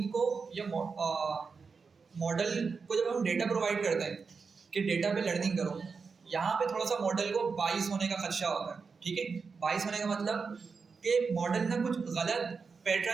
को या मॉडल को जब हम डेटा प्रोवाइड करते हैं कि डेटा पे लर्निंग करो, यहाँ पे थोड़ा सा मॉडल को बाइस होने का खदशा होता है, ठीक है। बाइस होने का मतलब कि मॉडल ना कुछ गलत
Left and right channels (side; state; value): left; quieter; 5.1 dB